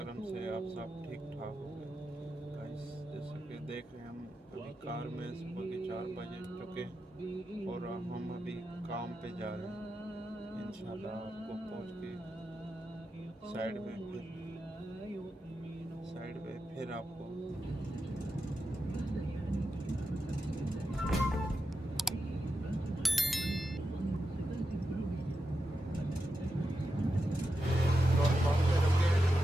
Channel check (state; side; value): normal; both; correlation 0.88